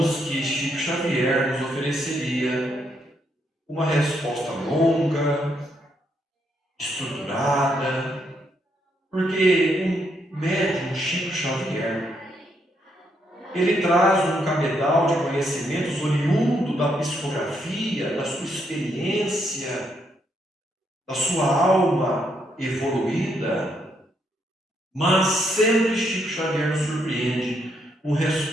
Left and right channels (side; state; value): both; normal; correlation 0.76